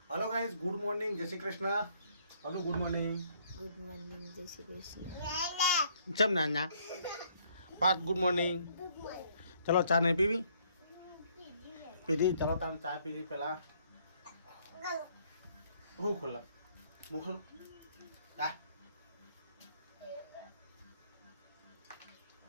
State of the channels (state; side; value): inverted; both; correlation -0.66